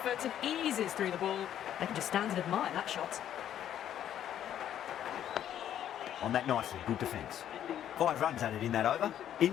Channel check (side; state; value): right; quieter; 10.6 dB